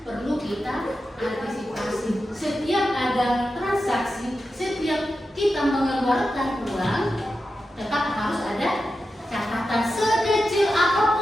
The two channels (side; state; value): both; normal; correlation 0.90